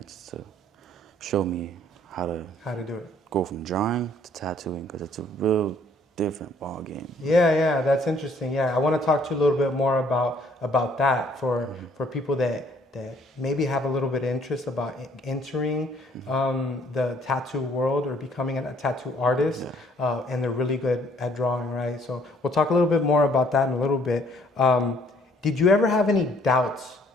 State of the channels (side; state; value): both; normal; correlation 0.62